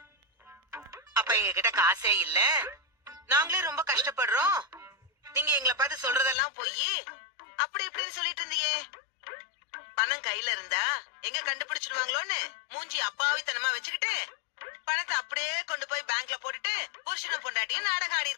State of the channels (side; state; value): right; drops out; at 6.4 s